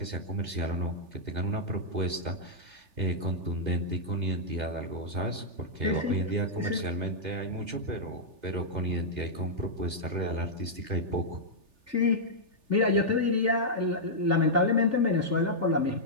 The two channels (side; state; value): left; late; 3.4 ms